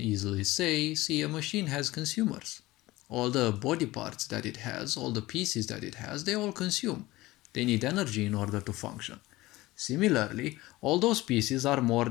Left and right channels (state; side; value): quieter; right; 18.8 dB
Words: say, see, a machine has consumers. All the body parts that it has, all the pieces that it has, they all consume. They need energy in order to function. Similarly, all those pieces are more